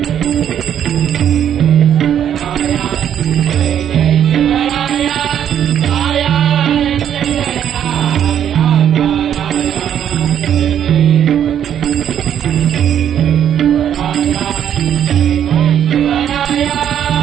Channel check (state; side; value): quieter; left; 9.6 dB